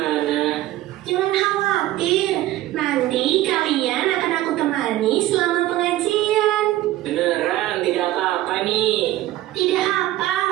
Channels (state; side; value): quieter; left; 15.3 dB